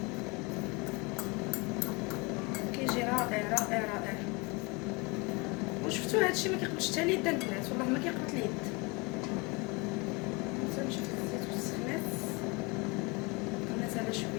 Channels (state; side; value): quieter; right; 27.7 dB